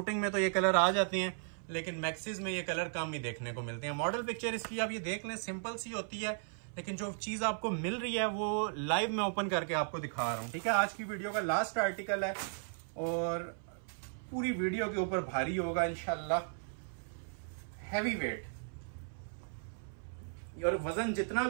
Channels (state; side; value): silent; left; 54 dB below the other